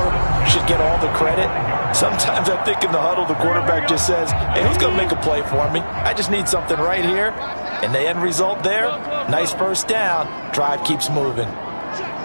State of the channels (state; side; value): inverted; both; correlation -1.00